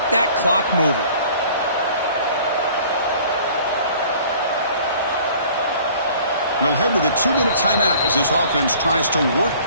that clock moving. We'll head to the 2-minute timeout as this offense tries to work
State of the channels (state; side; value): inverted; both; correlation -0.51